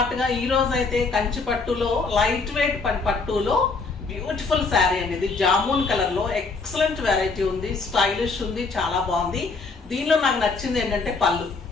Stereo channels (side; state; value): right; quieter; 4.2 dB